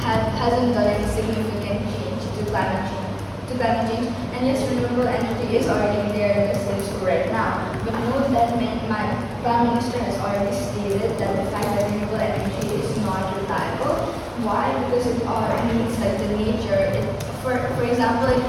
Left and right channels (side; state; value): both; identical; correlation 1.00